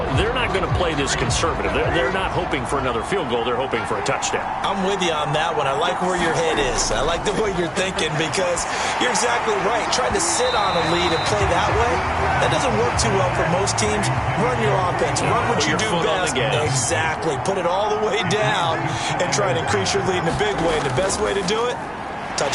They're not going to play this conservative. They're not hoping for another field goal. They're hoping for a touchdown. I'm with you on that one. I like where your head is. I like the way you're thinking because you're exactly right. Trying to sit on a lead and play that way, that doesn't work too well for most teams. Run your offense. Run what you do best. Exactly. Put it all the way down and try to increase your lead in a big way. And the best way to do it,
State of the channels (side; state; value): both; identical; correlation 1.00